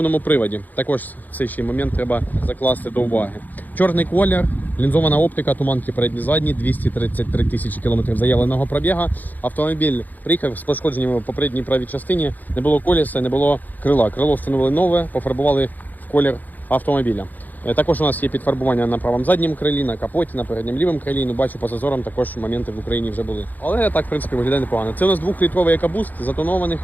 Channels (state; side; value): late; right; 0.083 ms